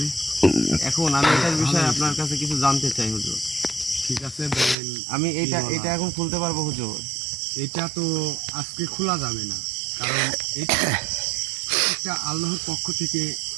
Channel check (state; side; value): drops out; left; at 4.8 s